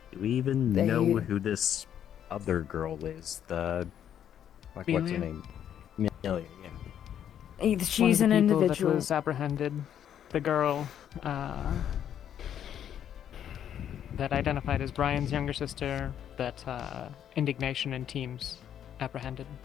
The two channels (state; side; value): quieter; right; 9.7 dB